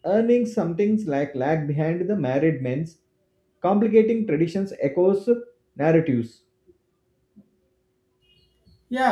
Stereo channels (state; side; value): identical; both; correlation 1.00